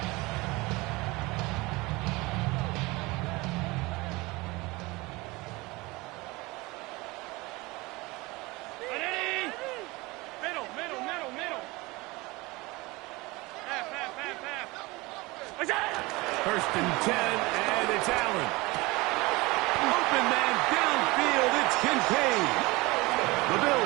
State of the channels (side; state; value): left; quieter; 22.8 dB